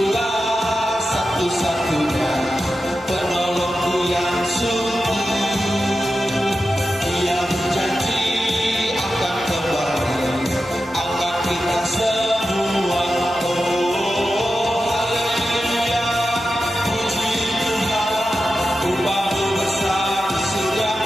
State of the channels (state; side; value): normal; both; correlation 0.91